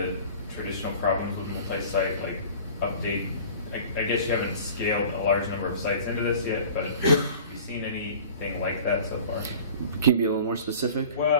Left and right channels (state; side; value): inverted; both; correlation -0.43